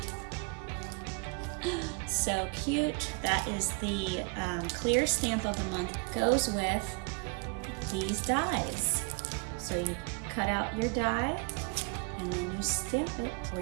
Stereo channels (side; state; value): left; quieter; 34.7 dB